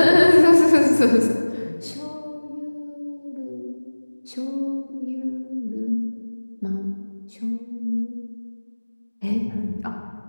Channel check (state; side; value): inverted; both; correlation -1.00